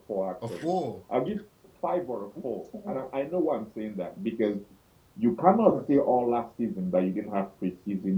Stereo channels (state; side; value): identical; both; correlation 1.00